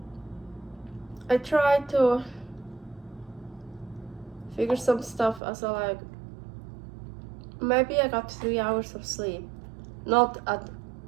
I try to figure some stuff as maybe I got 3 hours of sleep. Not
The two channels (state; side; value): drops out; left; at 5.4 s